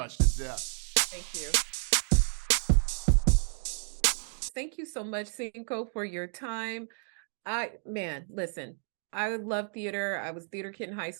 Yeah. Thank you. Thank you so much, Cinco, for your time. Listen, I love theater. I was theater kid in high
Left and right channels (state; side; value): silent; left; 57 dB below the other